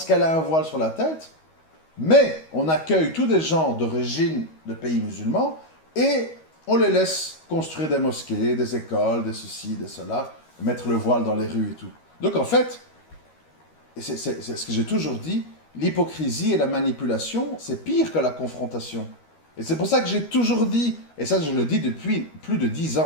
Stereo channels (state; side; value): late; right; 13 ms